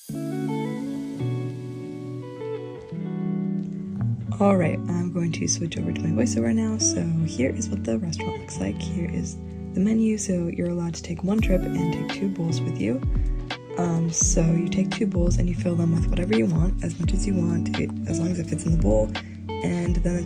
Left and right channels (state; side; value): identical; both; correlation 1.00